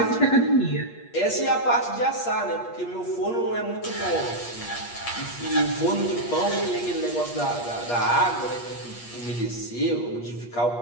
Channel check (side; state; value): right; late; 8.4 ms